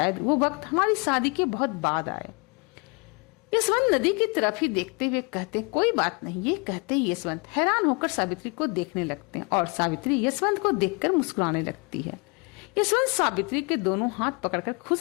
वो वक्त हमारी शादी के बहुत बाद आए। यशवंत नदी की तरफ ही देखते हुए कहते, कोई बात नहीं। ये कहते ही यशवंत हैरान होकर सावित्री को देखने लगते हैं और सावित्री यशवंत को देखकर मुस्कुराने लगती है। यशवंत सावित्री के दोनों हाथ पकड़कर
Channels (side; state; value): right; quieter; 31.7 dB